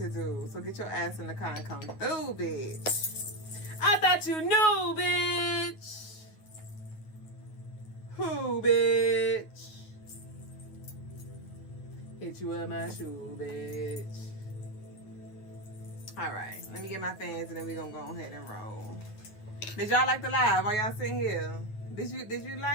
do. So get your ass in the car and come through, bitch. I thought you knew, bitch. Who, bitch? Hit you with my shoe, bitch. All right, let me get my fans and then we gonna go ahead and roll. Did y'all like the live? Are y'all sitting here? Did you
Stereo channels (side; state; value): right; late; 9.4 ms